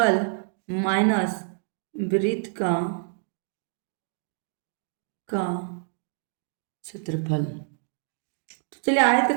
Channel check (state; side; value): silent; left; digital silence